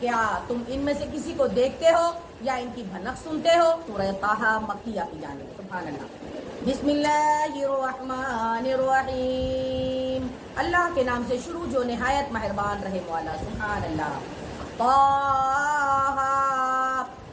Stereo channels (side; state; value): both; identical; correlation 1.00